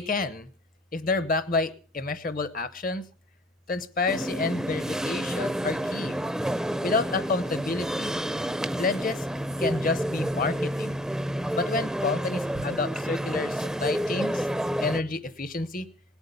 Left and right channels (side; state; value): both; normal; correlation 0.54